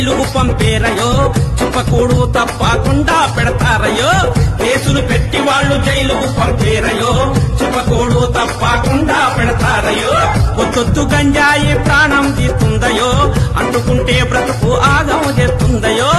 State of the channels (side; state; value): both; identical; correlation 1.00